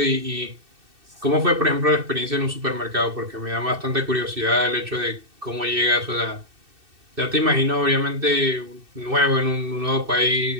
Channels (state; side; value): late; left; 2.6 ms